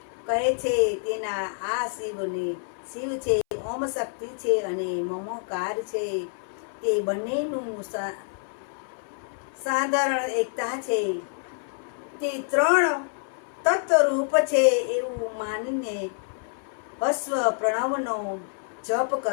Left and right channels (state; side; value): silent; right; 59 dB below the other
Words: કહે છે. તેના આ શિવને શિવ છે, ઓમ શક્તિ છે અને મમકાર છે. તે બંનેનું સાધારણ એકતા છે. તે ત્રણ તત્વરૂપ છે એવું માનીને હસ્વ પ્રણવનો જપ